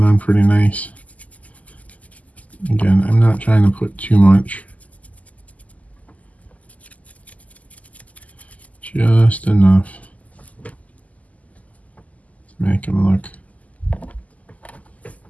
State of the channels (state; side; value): late; right; 0.073 ms